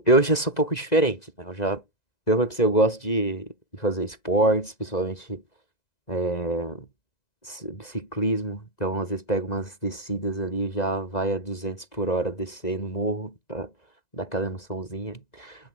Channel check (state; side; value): late; right; 2.0 ms